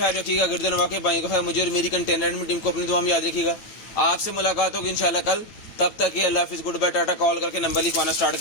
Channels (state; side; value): late; right; 9.0 ms